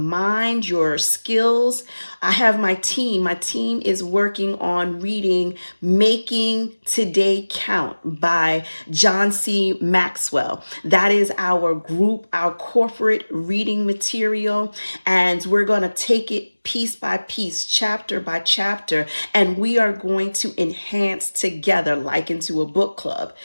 your skills. I have my team. My team is working on reading Making Today Count by John C. Maxwell. That is our group, our corporate reading material. And we're going to take it piece by piece, chapter by chapter, and we are going to enhance together like into a book club.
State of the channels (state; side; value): inverted; both; correlation -1.00